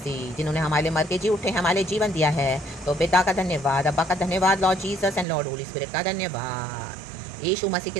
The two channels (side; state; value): left; drops out; at 5.2 s